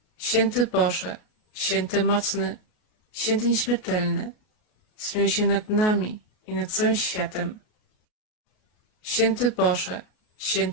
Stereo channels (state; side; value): late; right; 33 ms